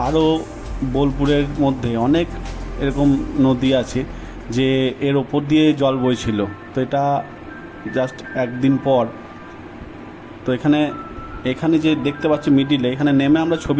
আরও বোলপুরের মধ্যে অনেক এরকম নদী আছে যে এর ওপর দিয়ে জল বইছিল। তো এটা জাস্ট একদিন পর, তো এখানে যে দেখতে পাচ্ছি মিডিলে, এখানে নেমে আমরা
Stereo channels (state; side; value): identical; both; correlation 1.00